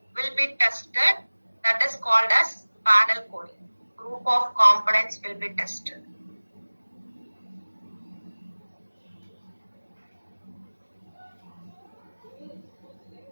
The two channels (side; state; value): both; inverted; correlation -1.00